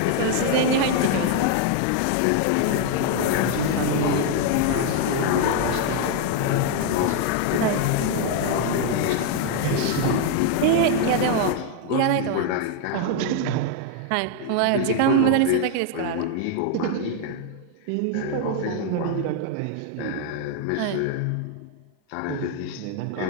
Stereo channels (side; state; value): both; different; correlation 0.00